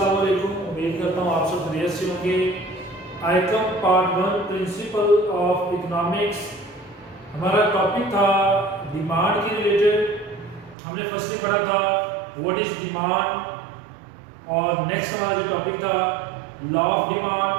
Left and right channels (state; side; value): drops out; left; at 10.8 s